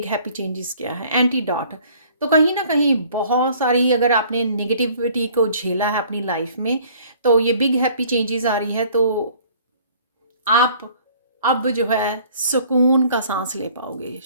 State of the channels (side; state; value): both; inverted; correlation -0.55